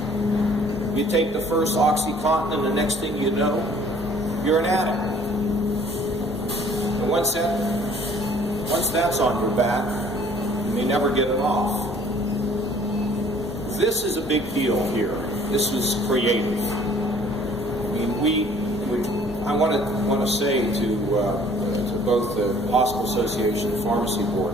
You take the first OxyContin and the next thing you know, you're an addict. And once that's on your back, you may never get it off. This is a big deal here. This was creative. I mean, I want to say to both the Hospital Association and Pharmacy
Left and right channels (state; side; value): normal; both; correlation 0.55